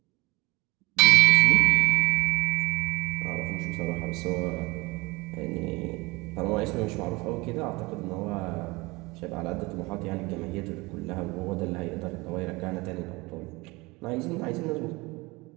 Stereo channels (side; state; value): left; quieter; 23.6 dB